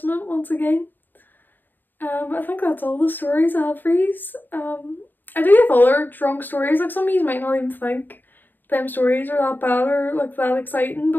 once again. I think that's all the stories I have for yous. I do have other drunk stories, like some of you might not even think them stories are that bad or like that exciting,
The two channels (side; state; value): right; late; 0.092 ms